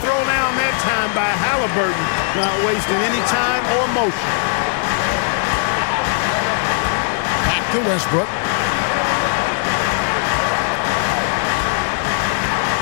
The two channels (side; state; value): right; silent; digital silence